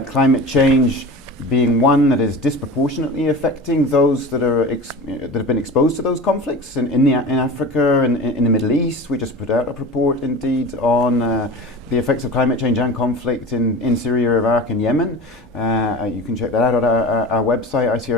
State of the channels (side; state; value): both; normal; correlation 0.33